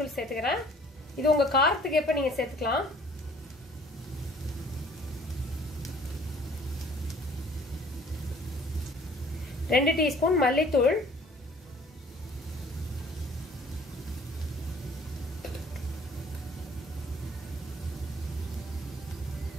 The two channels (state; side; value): normal; both; correlation 0.55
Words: சேர்த்துக்கிறேன். இது உங்க காரத்துக்கு எப்ப நீங்க சேர்த்துக்கலாம். ரெண்டு டீஸ்பூன் மல்லித்தூள்,